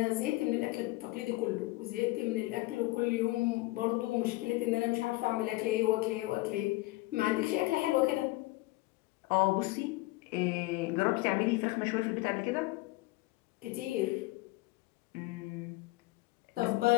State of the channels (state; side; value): quieter; right; 20.5 dB